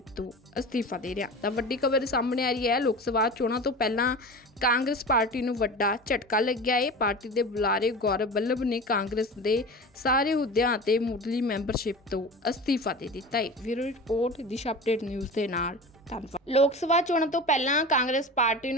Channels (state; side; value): normal; both; correlation 0.33